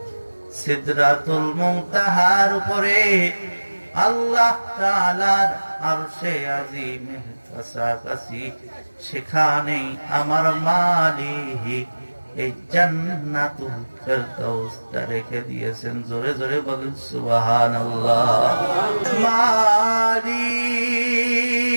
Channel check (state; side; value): inverted; both; correlation -1.00